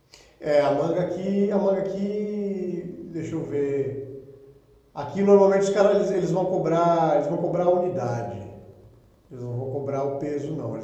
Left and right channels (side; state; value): both; identical; correlation 1.00